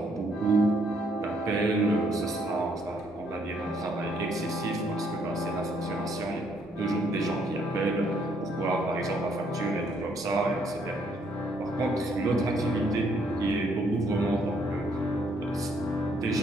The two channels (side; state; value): both; normal; correlation 0.69